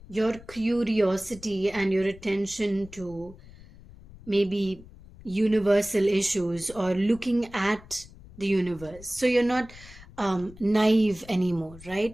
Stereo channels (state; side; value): noise; left; rumble, 20 dB below the sound